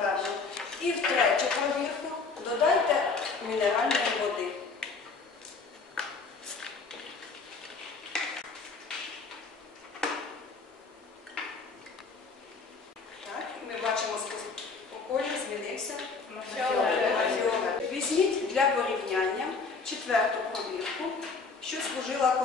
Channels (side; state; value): right; quieter; 4.5 dB